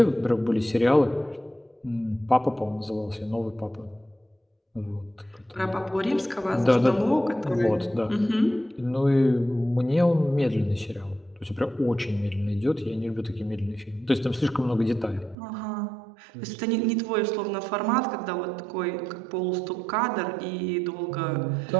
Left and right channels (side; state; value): left; drops out; at 15.4 s